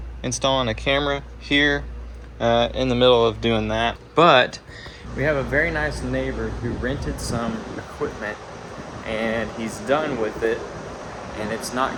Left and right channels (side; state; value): both; identical; correlation 1.00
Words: installing a camera here, in the middle of doing that. But we have a very nice neighbor who rented some equipment and he's done with it, and it's not